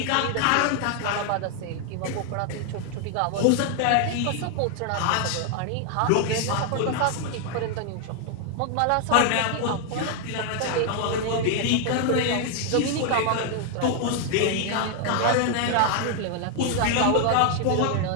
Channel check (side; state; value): both; different; correlation 0.00